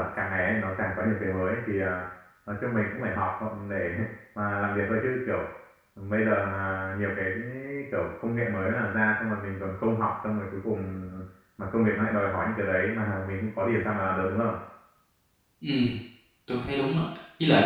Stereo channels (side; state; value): both; identical; correlation 1.00